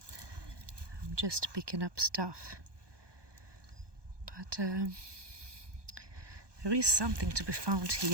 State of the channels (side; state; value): left; late; 1.2 ms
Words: I'm just picking up stuff. But there is something to be found